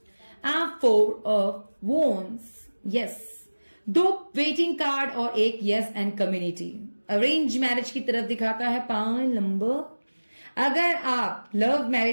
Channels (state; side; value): inverted; both; correlation -1.00